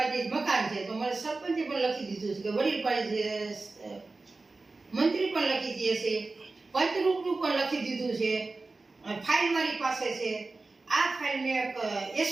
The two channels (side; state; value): left; quieter; 3.6 dB